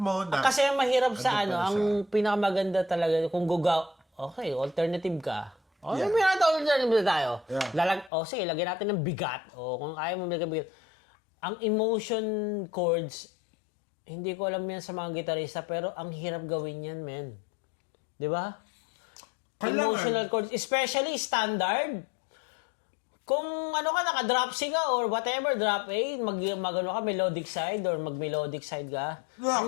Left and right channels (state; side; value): drops out; right; at 8.1 s